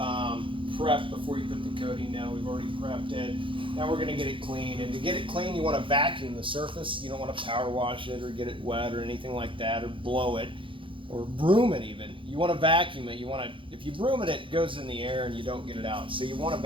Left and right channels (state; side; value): late; left; 0.25 ms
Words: prep before you put the coating down. We've already prepped it. Now we're going to get it clean. And to get it clean, you want to vacuum the surface. You don't want to power wash it or get it wet or anything like that, or blow it or broom it even. You want to vacuum it. You want to, if you broom it, it goes in the air and you don't get it out. So you want to